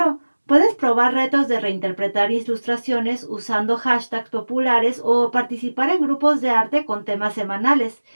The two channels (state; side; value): inverted; both; correlation -1.00